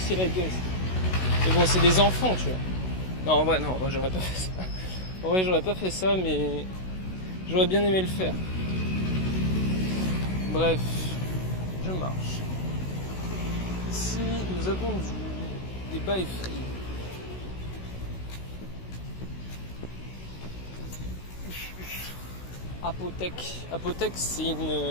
la gueule. Mais bon, c'est des enfants, tu vois. Non, en vrai, j'aurais pas fait ça. En vrai, j'aurais pas fait ça, mais j'aurais bien aimé le faire. Bref, je marche. Ici, nous avons des bails free. Apothèque, c'est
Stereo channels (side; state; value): right; late; 16 ms